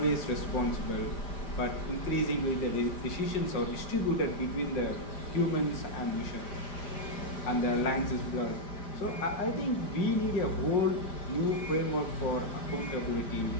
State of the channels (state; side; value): late; right; 5.0 ms